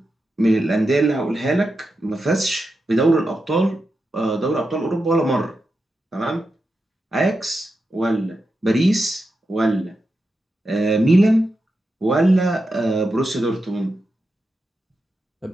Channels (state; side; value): normal; both; correlation 0.88